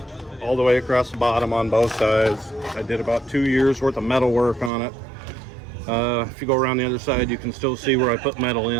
all the way across the bottom on both sides. I did about 2 years worth of metal work on it. If you go around the other side, you can still see where I put metal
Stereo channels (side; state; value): left; drops out; at 4.7 s